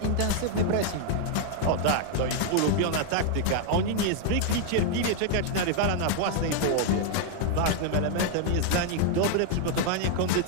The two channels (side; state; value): both; different; correlation 0.00